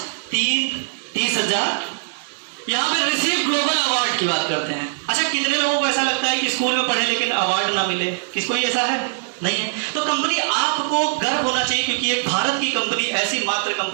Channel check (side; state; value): left; silent; digital silence